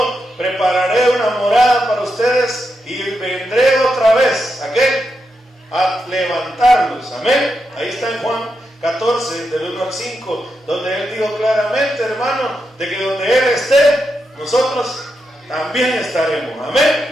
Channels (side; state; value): both; normal; correlation 0.85